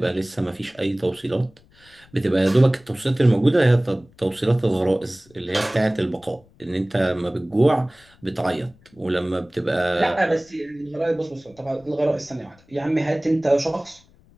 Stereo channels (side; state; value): left; noise; rumble, 29 dB below the sound